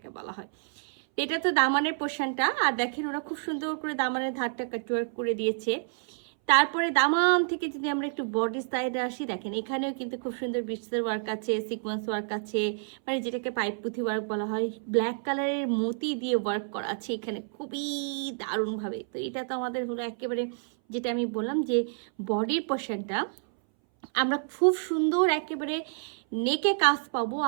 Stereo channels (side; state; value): left; silent; 59 dB below the other